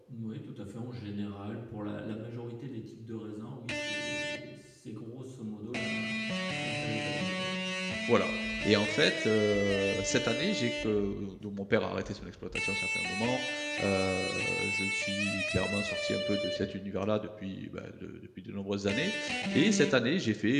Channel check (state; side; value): identical; both; correlation 1.00